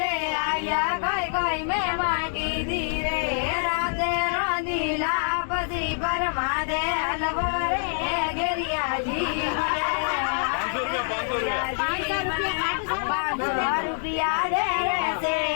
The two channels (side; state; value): right; silent; digital silence